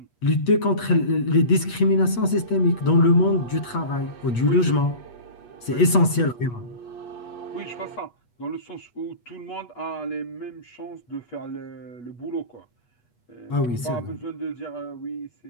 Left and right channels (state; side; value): late; right; 8.3 ms